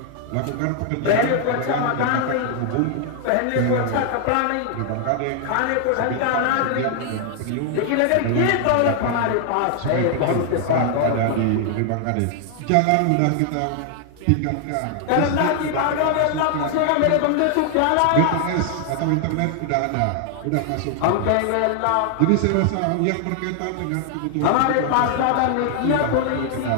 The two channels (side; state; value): both; different; correlation 0.00